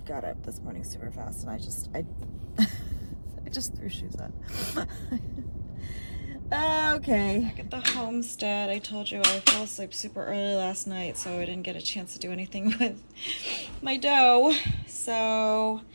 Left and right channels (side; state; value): both; inverted; correlation -1.00